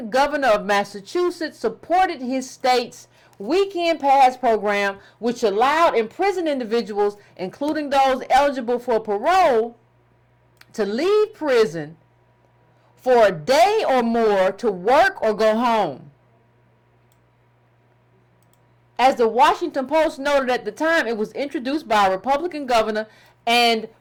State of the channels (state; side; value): identical; both; correlation 1.00